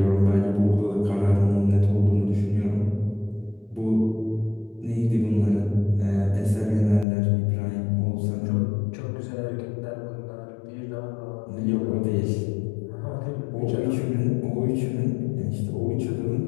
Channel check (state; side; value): drops out; right; at 7.1 s